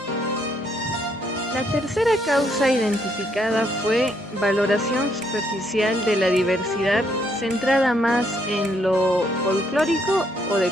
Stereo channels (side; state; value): both; normal; correlation 0.72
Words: La tercera causa identificada fue valoración superficial de la diversidad centrada más en lo folclórico o